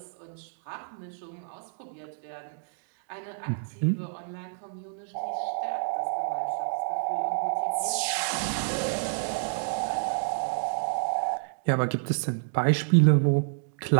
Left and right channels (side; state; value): left; silent; digital silence